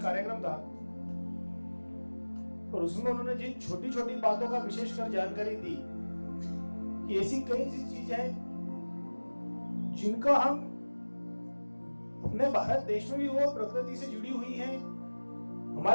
कार्यक्रम था और उसमें उन्होंने जिन छोटी छोटी बातों का विशेषकर जानकारी दी कि ऐसी कई चीजें हैं जिनका हम अपने भारत देश में भी वो प्रकृति से जुड़ी हुई हैं,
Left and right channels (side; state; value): both; inverted; correlation -1.00